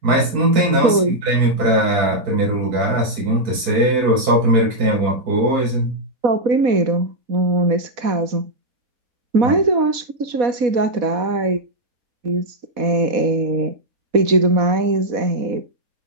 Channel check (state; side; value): late; left; 4.1 ms